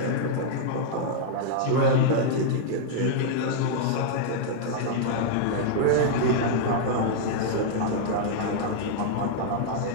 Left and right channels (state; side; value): different; both; correlation -0.01